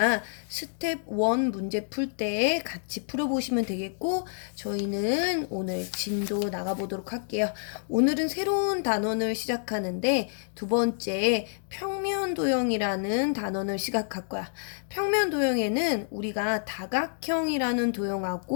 스텝 1 문제 풀 때 같이 풀어보시면 되겠고, 저희는 오늘 진도 나가보도록 할게요. 오늘은 새로운 단원을 시작하는데 두 번째 평면도형이라는 단원을 시작할 거야. 평면도형에는 우리가 다각형이라는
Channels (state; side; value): silent; right; digital silence